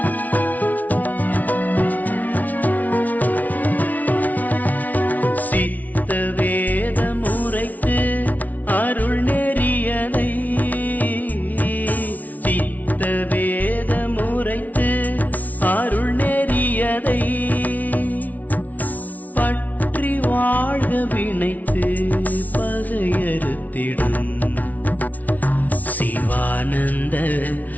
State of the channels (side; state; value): right; late; 0.075 ms